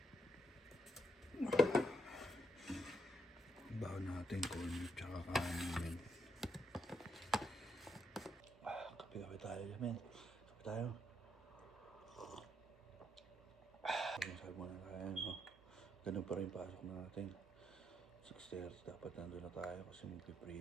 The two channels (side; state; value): both; normal; correlation 0.77